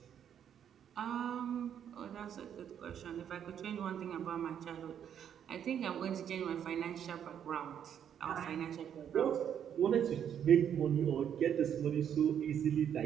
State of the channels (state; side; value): quieter; left; 9.0 dB